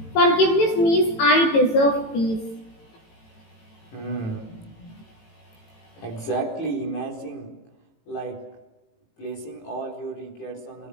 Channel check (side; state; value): right; late; 18 ms